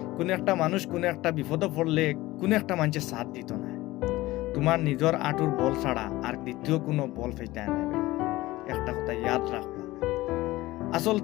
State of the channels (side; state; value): right; quieter; 18.3 dB